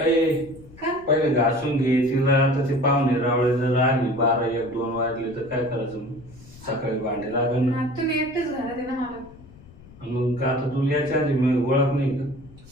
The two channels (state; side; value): noise; left; rumble, 21 dB below the sound